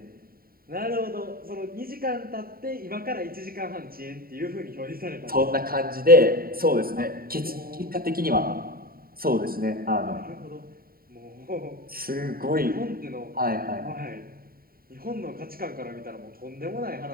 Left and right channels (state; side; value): late; left; 0.43 ms